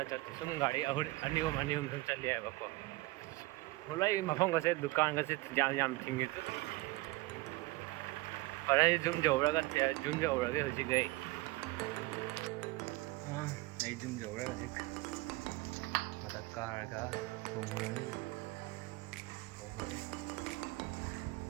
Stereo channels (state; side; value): quieter; left; 20.8 dB